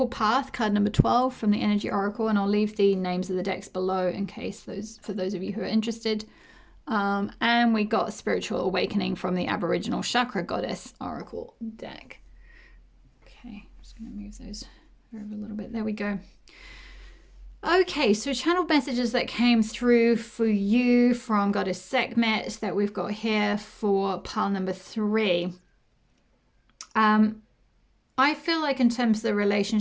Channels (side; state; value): both; identical; correlation 1.00